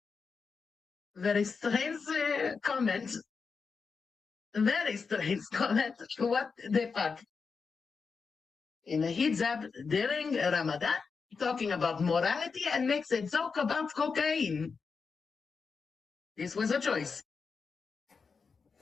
Very strange comment. Very strange comment. What the fuck? In a hijab during Ramadan, talking about morality and makes a joke about cocaine. This was a choice.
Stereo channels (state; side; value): quieter; right; 5.1 dB